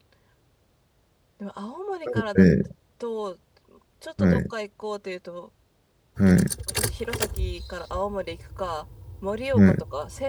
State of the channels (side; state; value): both; identical; correlation 1.00